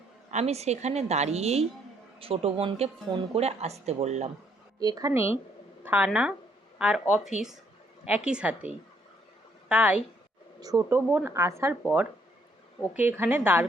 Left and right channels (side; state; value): both; normal; correlation 0.69